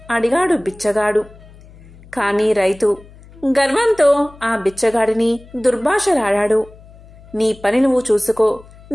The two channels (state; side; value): noise; left; hum, 22 dB below the sound